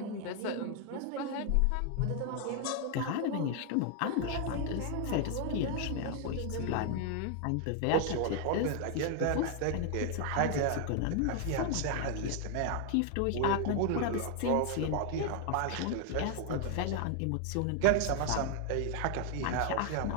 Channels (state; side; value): different; both; correlation 0.00